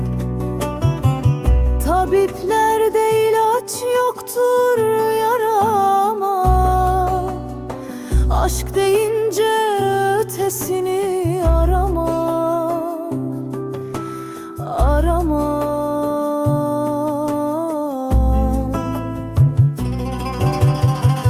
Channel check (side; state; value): both; identical; correlation 1.00